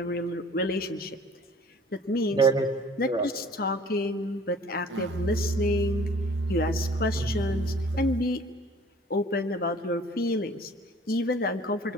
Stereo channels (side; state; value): both; normal; correlation 0.50